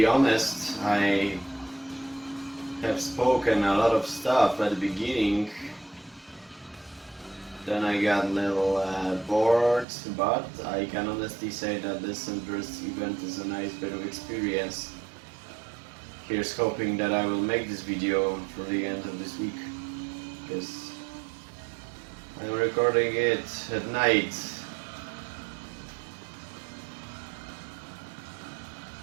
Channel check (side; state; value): left; drops out; at 9.9 s